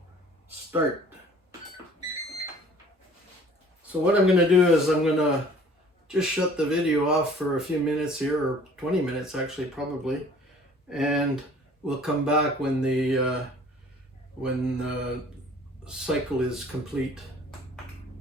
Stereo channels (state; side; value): normal; both; correlation 0.52